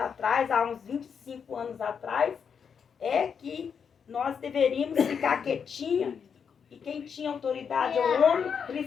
há uns 25 anos atrás, é que nós deveríamos ficar quietinha. E quem tinha autoridade é o homem,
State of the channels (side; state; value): right; quieter; 6.8 dB